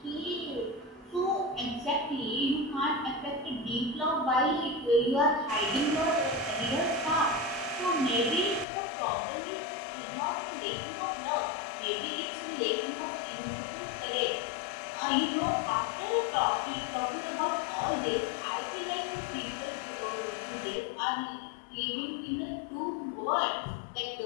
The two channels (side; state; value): right; drops out; at 8.7 s